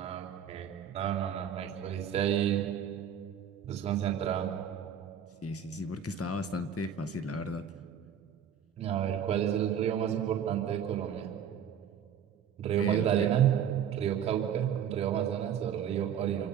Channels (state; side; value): quieter; left; 8.4 dB